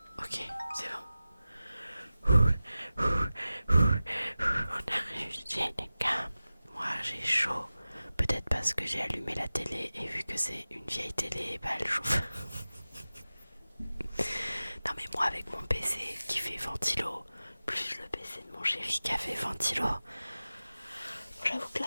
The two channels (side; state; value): both; inverted; correlation -0.96